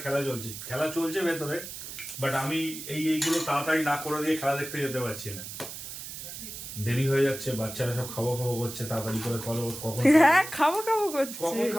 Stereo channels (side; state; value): right; noise; hiss, 10 dB below the sound